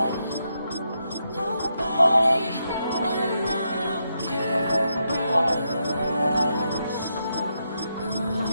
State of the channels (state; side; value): inverted; both; correlation -0.82